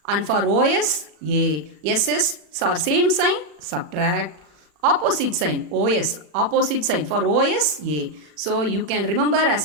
and for OS, A. SS are same sign, subtract. Opposite sign, OS, opposite sign for OS, A. So you can remember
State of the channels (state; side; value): late; left; 40 ms